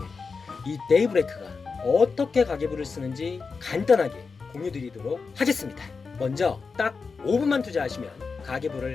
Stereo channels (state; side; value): quieter; right; 4.8 dB